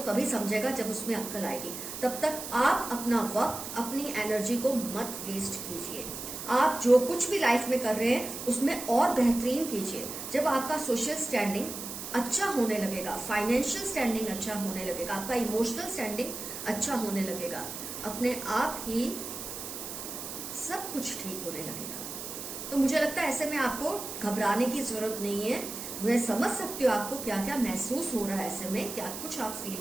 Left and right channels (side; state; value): right; noise; hiss, 8 dB below the sound